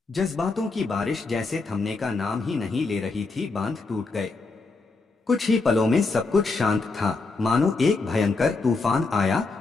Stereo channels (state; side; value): quieter; right; 3.8 dB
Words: जज्बातों की बारिश जैसे थमने का नाम ही नहीं ले रही थी, बांध टूट गए। कुछ ही पलों में सब कुछ शांत था, मानो एक भयंकर तूफान आया